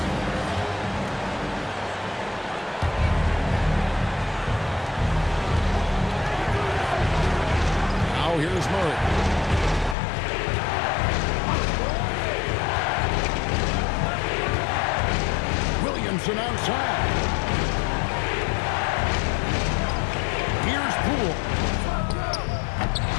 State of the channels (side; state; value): right; drops out; at 10.0 s